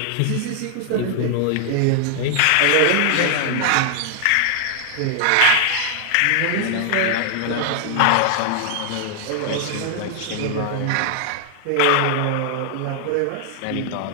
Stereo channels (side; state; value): both; different; correlation 0.00